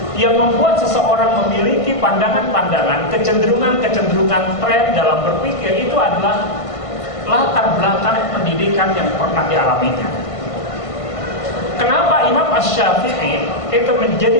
Yang membuat seseorang memiliki pandangan-pandangan, kecenderungan-kecenderungan tren dalam berpikir itu adalah latar belakang pendidikan yang pernah dialaminya. Kenapa Imam Asy-Syafi'i itu menjadi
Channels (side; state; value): right; late; 1.5 ms